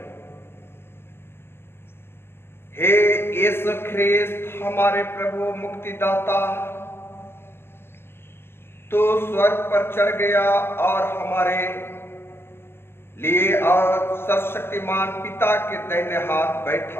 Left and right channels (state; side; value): late; right; 0.12 ms